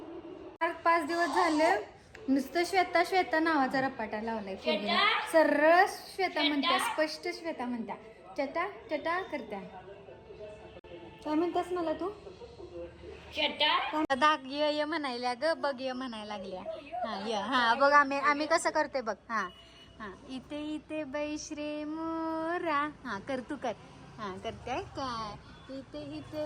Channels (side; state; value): both; identical; correlation 1.00